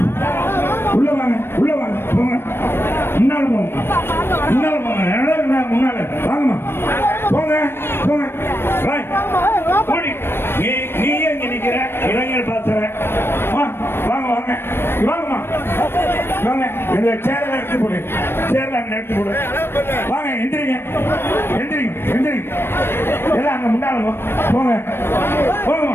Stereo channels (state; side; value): late; right; 0.11 ms